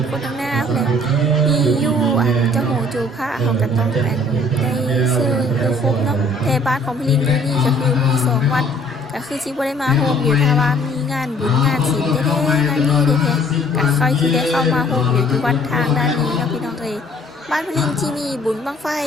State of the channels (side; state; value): both; normal; correlation 0.57